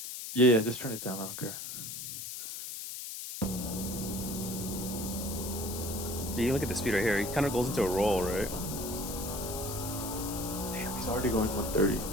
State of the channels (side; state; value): left; noise; hiss, 7 dB below the sound